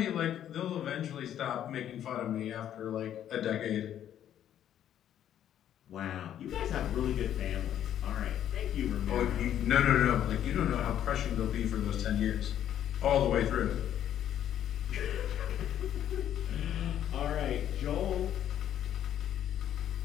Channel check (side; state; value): right; quieter; 10.6 dB